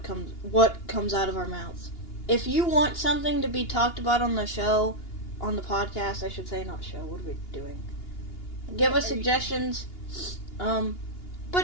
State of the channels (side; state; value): right; late; 2.8 ms